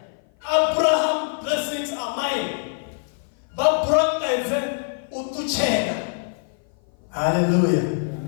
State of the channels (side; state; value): right; silent; 56 dB below the other